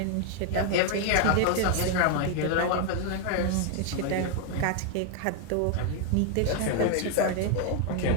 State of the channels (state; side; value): different; both; correlation 0.00